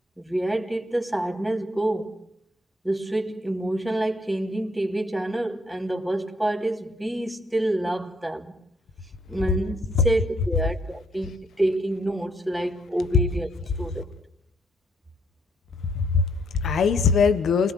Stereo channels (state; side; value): normal; both; correlation 0.70